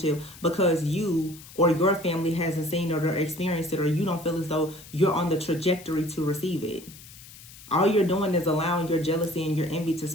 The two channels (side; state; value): left; noise; hiss, 19 dB below the sound